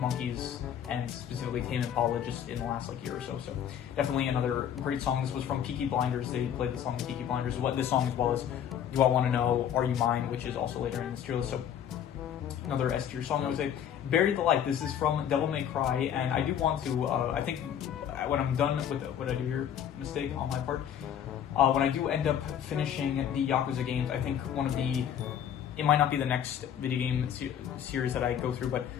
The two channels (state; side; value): quieter; right; 9.4 dB